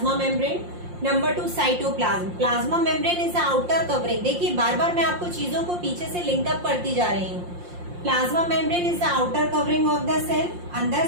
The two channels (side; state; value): left; late; 5.7 ms